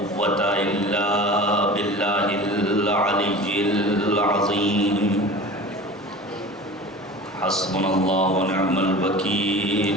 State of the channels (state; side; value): normal; both; correlation 0.37